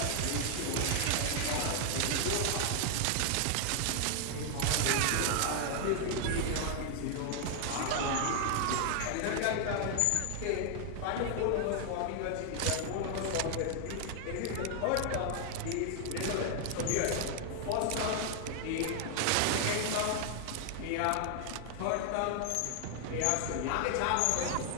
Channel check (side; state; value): both; different; correlation 0.00